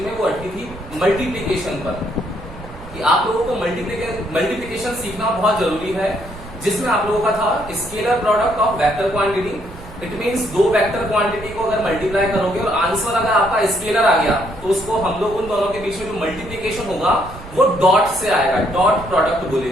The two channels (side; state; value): right; noise; rumble, 16 dB below the sound